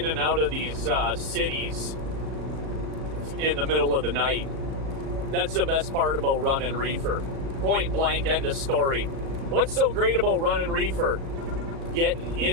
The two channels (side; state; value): left; late; 37 ms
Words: and out of these cities in the middle of the night. That's the best part about running reefer. Point blank, end of story. What's so great about running reefer? Getting